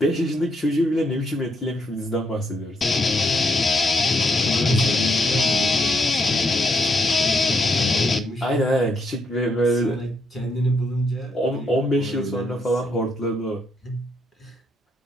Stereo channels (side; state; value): both; normal; correlation 0.76